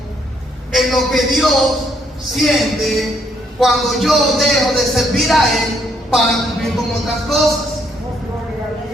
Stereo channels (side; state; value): both; normal; correlation 0.71